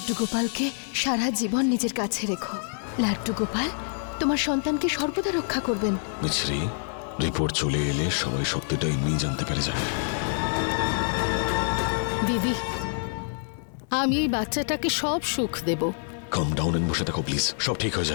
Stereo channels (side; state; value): right; silent; digital silence